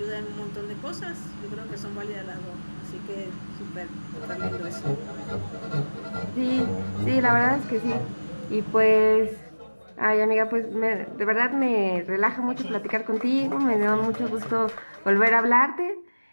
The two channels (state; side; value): inverted; both; correlation -1.00